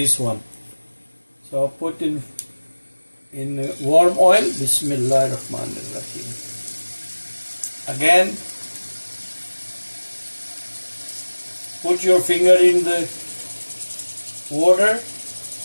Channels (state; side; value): inverted; both; correlation -1.00